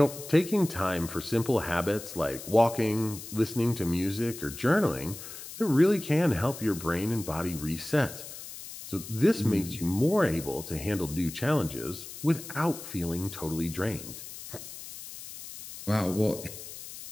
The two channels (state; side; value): noise; left; hiss, 12 dB below the sound